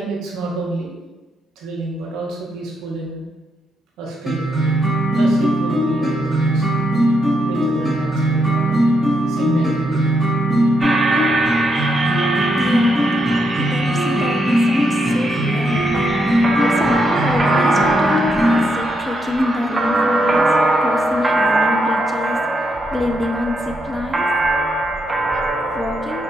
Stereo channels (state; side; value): normal; both; correlation 0.80